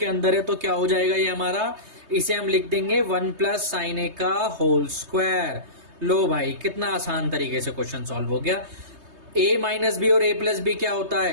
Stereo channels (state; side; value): late; left; 3.2 ms